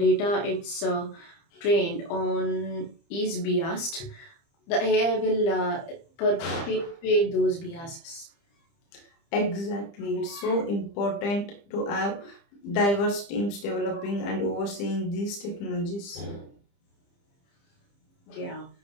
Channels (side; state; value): right; late; 30 ms